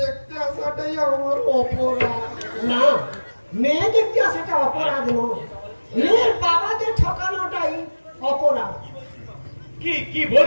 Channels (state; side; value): inverted; both; correlation -1.00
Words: আসাটাই আমার অপরাধ। না, মেয়ে দেখতে আসাটা অপরাধ নয়, মেয়ের বাবাদের ঠকানোটাই অপরাধ। কি কি